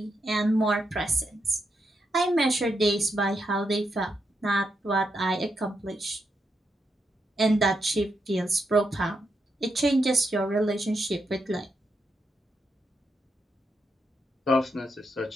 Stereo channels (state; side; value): normal; both; correlation 0.82